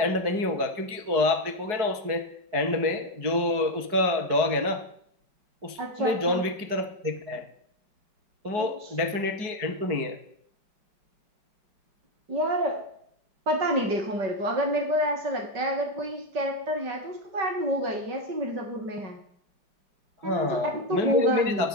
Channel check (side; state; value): left; late; 4.7 ms